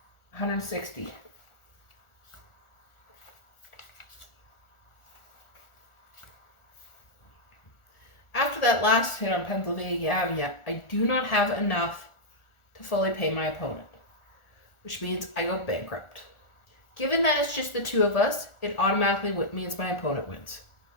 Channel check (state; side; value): late; right; 1.4 ms